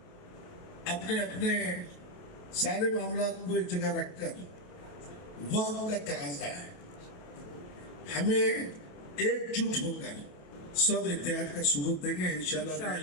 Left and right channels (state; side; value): late; right; 28 ms